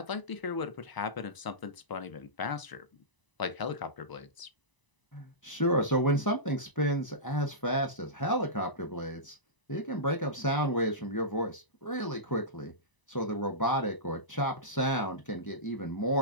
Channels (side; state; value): right; late; 1.0 ms